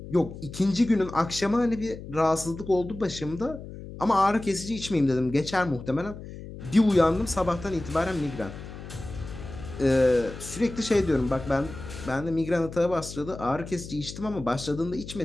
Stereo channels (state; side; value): noise; left; hum, 12 dB below the sound